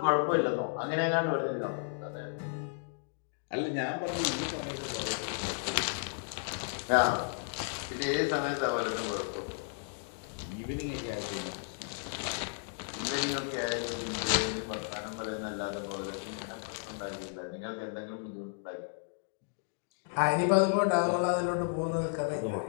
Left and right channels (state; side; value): silent; right; 55 dB below the other